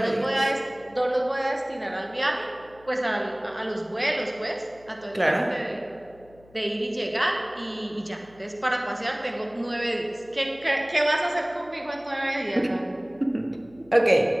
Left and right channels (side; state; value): left; noise; hum, 26 dB below the sound